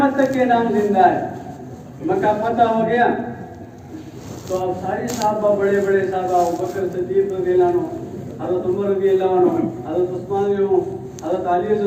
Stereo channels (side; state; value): both; identical; correlation 1.00